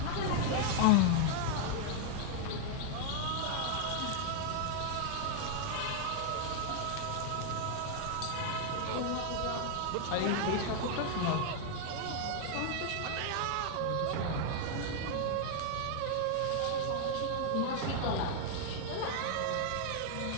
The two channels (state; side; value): different; both; correlation 0.00